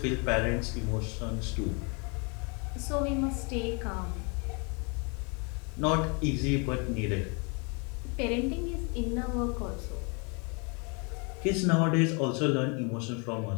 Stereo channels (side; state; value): right; quieter; 33.6 dB